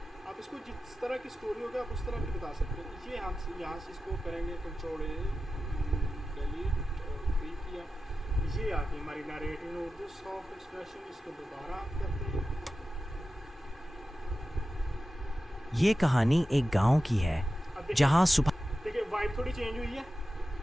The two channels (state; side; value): normal; both; correlation 0.93